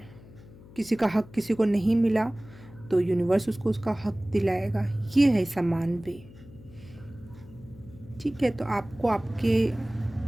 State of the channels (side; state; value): left; noise; hum, 20 dB below the sound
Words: हक किसी को नहीं मिला तो यूनिवर्स उसको उसका हक दिलाएगा। ये है समान वे। ठीक है, तो आपको आपके